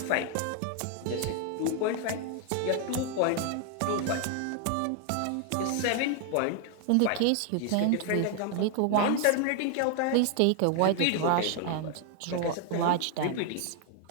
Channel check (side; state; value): both; different; correlation 0.00